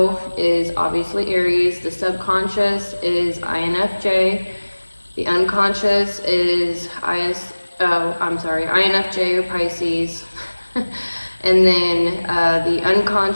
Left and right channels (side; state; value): both; inverted; correlation -1.00